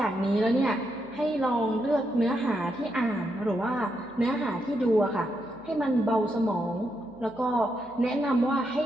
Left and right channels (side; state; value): right; noise; hum, 28 dB below the sound